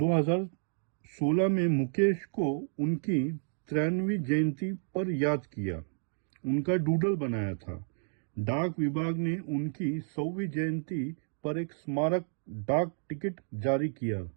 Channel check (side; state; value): left; silent; digital silence